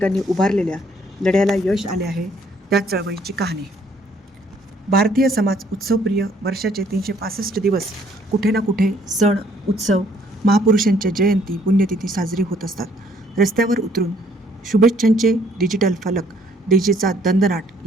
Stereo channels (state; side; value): normal; both; correlation 0.63